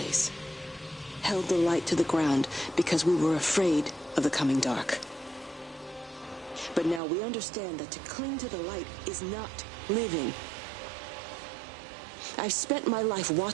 Held the light to the ground because we were afraid of the coming dark. But now we understand that to cling to the light is not living. I've spent my life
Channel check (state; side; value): drops out; left; at 7.0 s